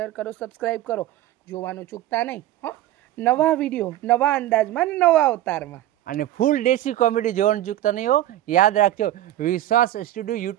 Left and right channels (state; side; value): quieter; left; 13.7 dB